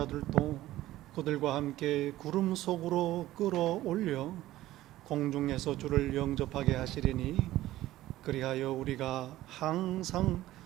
그들과 함께 구름 속으로 끌어올려 공중에서 주를 영접하게 하시리니 그리하여 우리가 항상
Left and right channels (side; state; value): left; quieter; 15.4 dB